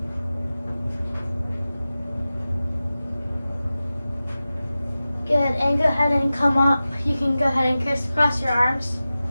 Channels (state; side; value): inverted; both; correlation -0.95